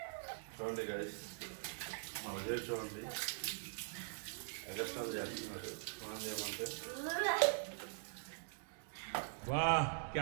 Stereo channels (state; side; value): silent; left; digital silence